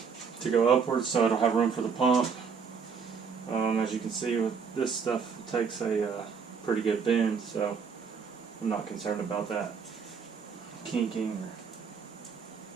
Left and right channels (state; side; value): quieter; left; 5.9 dB